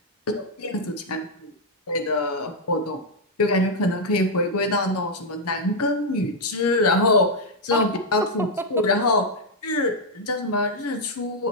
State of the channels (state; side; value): normal; both; correlation -0.02